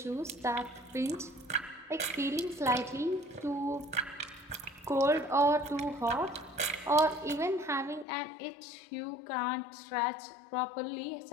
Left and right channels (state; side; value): drops out; right; at 8.1 s